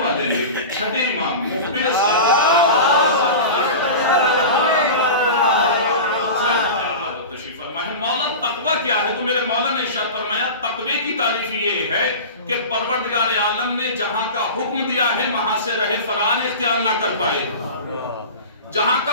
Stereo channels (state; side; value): inverted; both; correlation -0.30